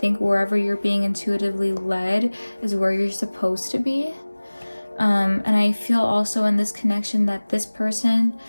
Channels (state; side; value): inverted; both; correlation -1.00